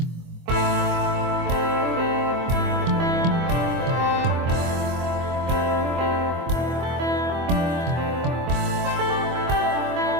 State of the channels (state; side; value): late; left; 24 ms